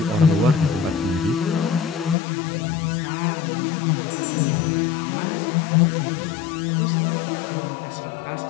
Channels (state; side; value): drops out; right; at 2.1 s